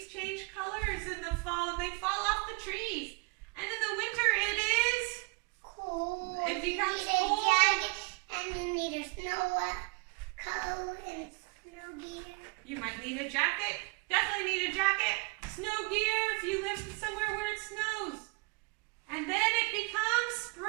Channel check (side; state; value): left; quieter; 29.2 dB